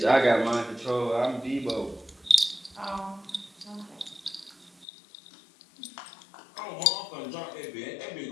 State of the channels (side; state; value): right; drops out; at 4.9 s